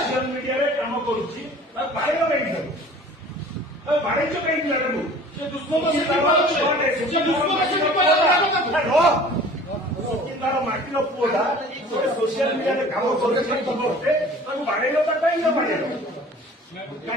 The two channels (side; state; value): both; normal; correlation 0.46